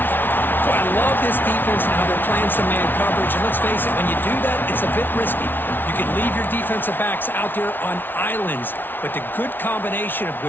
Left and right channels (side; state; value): right; late; 0.096 ms